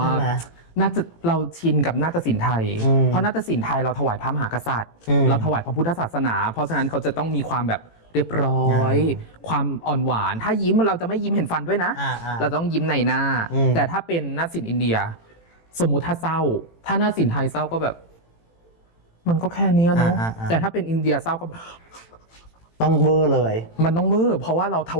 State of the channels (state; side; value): late; right; 18 ms